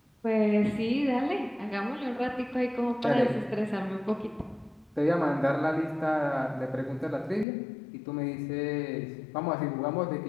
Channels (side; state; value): right; drops out; at 7.5 s